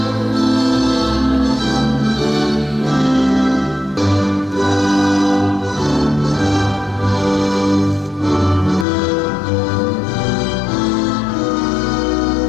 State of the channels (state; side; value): drops out; right; at 8.8 s